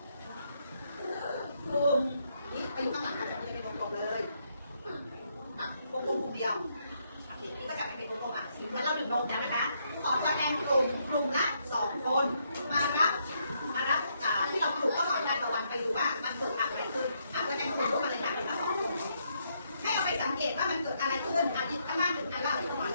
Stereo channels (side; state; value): both; inverted; correlation -0.75